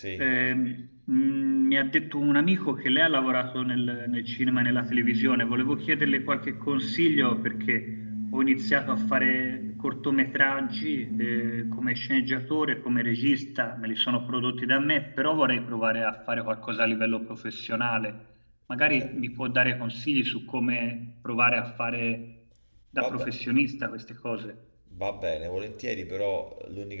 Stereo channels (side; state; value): both; inverted; correlation -1.00